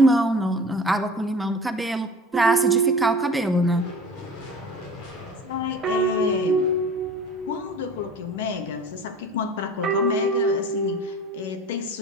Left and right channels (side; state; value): both; normal; correlation 0.40